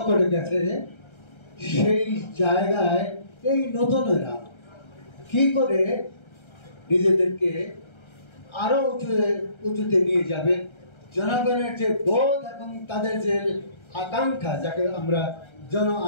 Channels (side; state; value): right; late; 1.3 ms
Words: করে গেছে, সেই জায়গায় এই নতুনেরা কি করে নিজেদেরকে আরো উঁচুতে নিয়ে যাবে। জনগণের যে বোধ এবং তাদের যে আকাঙ্ক্ষা, যাকে আমরা জন